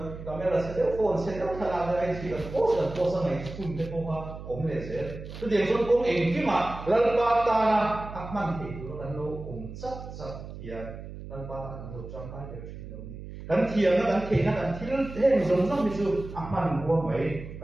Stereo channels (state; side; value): noise; right; hum, 12 dB below the sound